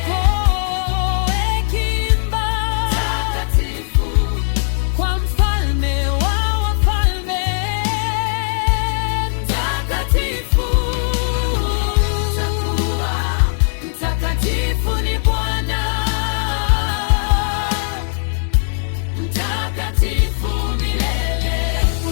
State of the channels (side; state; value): right; silent; digital silence